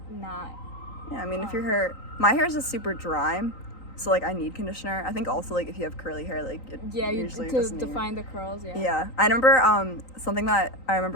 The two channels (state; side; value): late; right; 3.9 ms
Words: not. Yeah, I mean, if your hair, my hair is just super dry, so like I need conditioner. I think also like if you have curly hair, like it Yeah, you usually to doesn't define the curls. Yeah. Yeah, I remember something that I